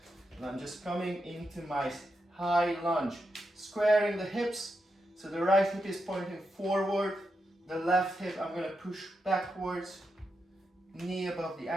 And I'm just coming into my high lunge, squaring the hips, so the right hip is pointing forward, the left hip I'm going to push backwards, knee above the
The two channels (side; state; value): both; normal; correlation 0.85